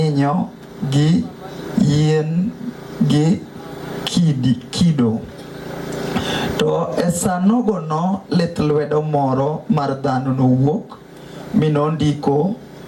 gi yien gi kido. To esanogono lith lwedo moro mar dhano nowuok minondiko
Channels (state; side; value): identical; both; correlation 1.00